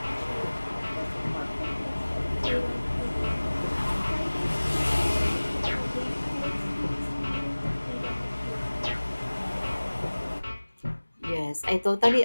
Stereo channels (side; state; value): both; inverted; correlation -1.00